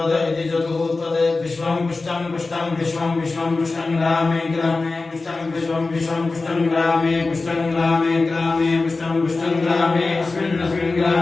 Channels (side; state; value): right; quieter; 3.7 dB